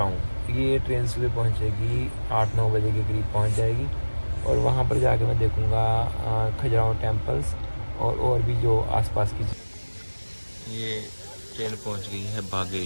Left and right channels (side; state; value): both; inverted; correlation -1.00